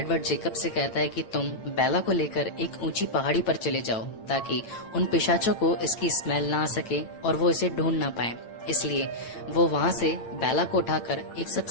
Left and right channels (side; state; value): right; late; 8.9 ms